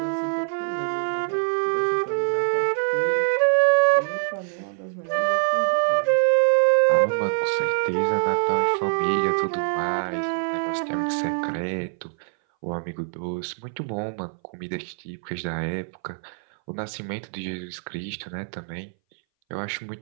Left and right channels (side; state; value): left; silent; 60 dB below the other